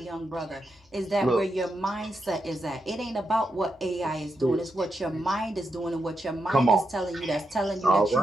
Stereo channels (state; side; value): normal; both; correlation 0.85